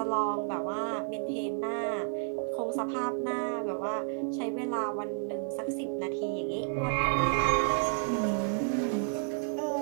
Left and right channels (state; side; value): silent; left; 57 dB below the other